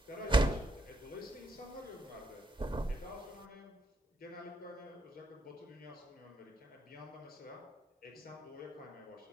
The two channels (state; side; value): normal; both; correlation 0.76